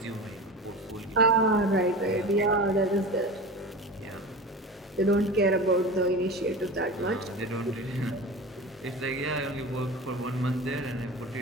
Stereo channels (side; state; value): both; normal; correlation 0.31